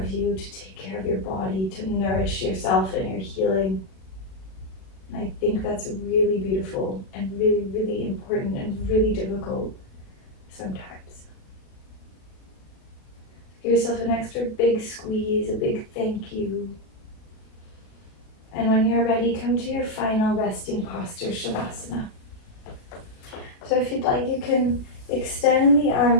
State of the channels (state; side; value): late; right; 36 ms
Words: you, to take care of your body, to nourish yourself and your healing. And I think that's really beautiful and really, really important and really difficult sometimes. Give yourself an extra big squeeze, a big thank you. And when you're ready, come to your final resting posture, Shavasana. So if you'd like, you can extend the